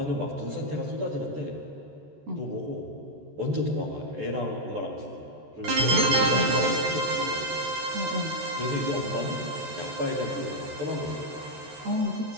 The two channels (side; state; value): left; late; 14 ms